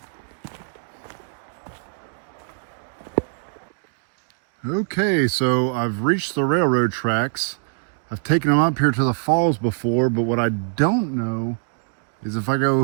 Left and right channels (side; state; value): left; silent; digital silence